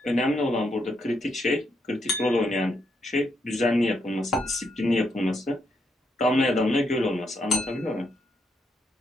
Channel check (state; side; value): normal; both; correlation 0.78